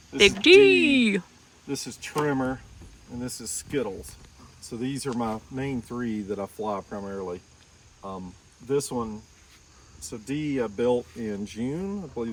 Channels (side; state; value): both; identical; correlation 1.00